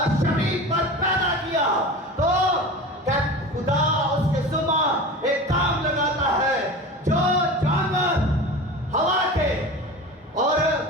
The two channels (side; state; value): both; normal; correlation 0.32